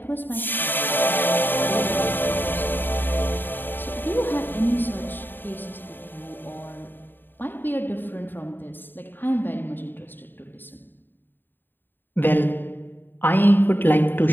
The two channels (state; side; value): late; right; 0.094 ms